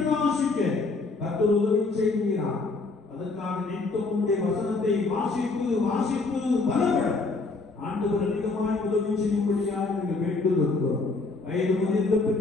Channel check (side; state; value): right; quieter; 3.7 dB